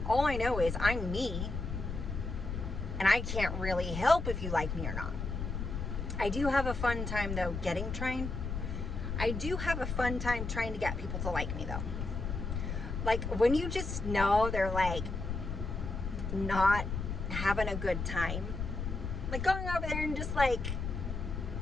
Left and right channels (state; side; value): noise; left; rumble, 4 dB below the sound